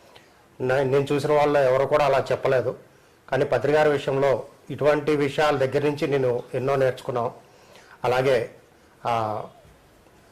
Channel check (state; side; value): identical; both; correlation 1.00